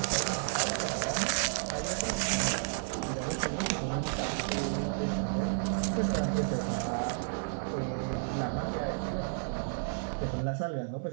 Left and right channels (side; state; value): left; silent; 56 dB below the other